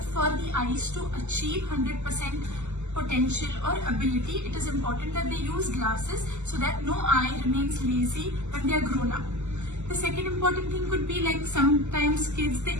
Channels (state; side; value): late; left; 0.83 ms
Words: for the eyes to achieve 100% potential or ability. It is important that they use glasses so that no eye remains lazy when they are grown up. The second important thing could be, like, sometimes kids, the